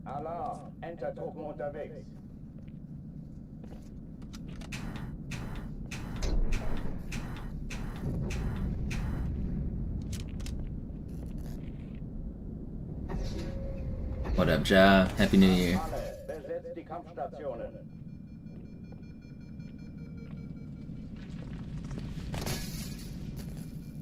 Alarm! Enter-Truppen unterwegs. What up, Ja? Happy New Year. Besetzt die Kampfstationen.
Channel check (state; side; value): identical; both; correlation 1.00